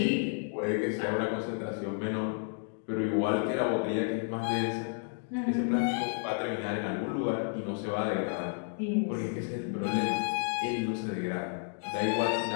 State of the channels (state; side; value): silent; right; 57 dB below the other